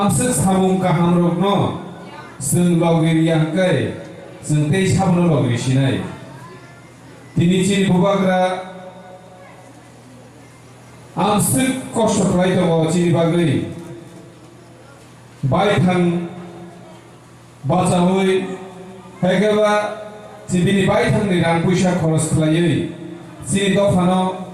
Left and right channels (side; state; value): both; identical; correlation 1.00